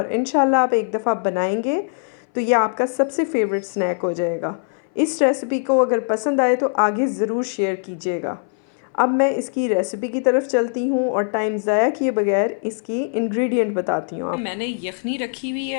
इंशाल्लाह आप एक दफ़ा बनाएंगे तो ये आपका सबसे फेवरेट स्नैक हो जाएगा। इस रेसिपी को अगर पसंद आए तो आगे ज़रूर शेयर कीजिएगा। अब मैं इसकी रेसिपी की तरफ चलती हूँ और टाइम ज़ाया किए बगैर इसकी इंग्रेडिएंट बताती हूँ। मैंने यखनी रखी हुई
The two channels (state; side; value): silent; right; 61 dB below the other